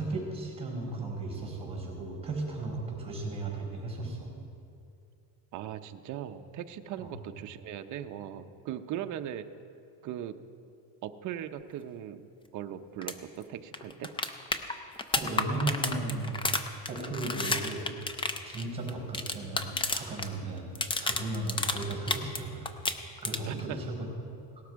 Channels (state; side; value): normal; both; correlation 0.19